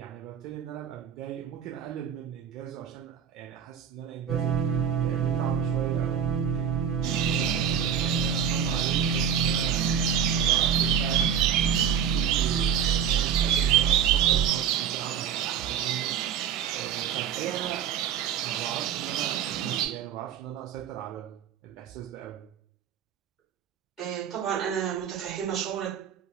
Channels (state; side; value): quieter; left; 8.3 dB